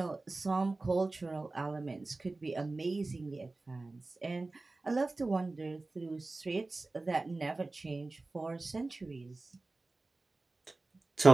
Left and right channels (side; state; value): left; quieter; 3.3 dB